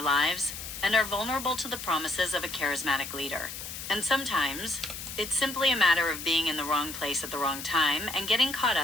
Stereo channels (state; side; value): noise; left; hiss, 9 dB below the sound